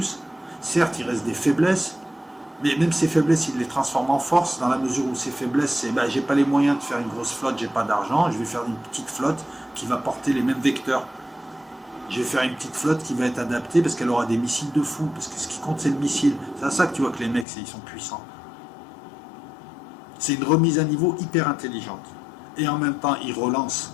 Certes, il reste des faiblesses, mais même ces faiblesses, il les transforme en force, dans la mesure où ces faiblesses, c'est j'ai pas les moyens de faire une grosse flotte, j'ai pas d'argent, je vais faire une petite flotte qui va porter les mêmes vecteurs. Je vais faire une petite flotte qui va être adaptée parce qu'elle aura des missiles de fou, parce que ce qui compte c'est le missile. C'est à ça que tu vois que les mecs, ils sont puissants. C'est une remise à niveau hyper intelligente. Et en même temps, ils relancent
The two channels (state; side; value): drops out; right; at 17.4 s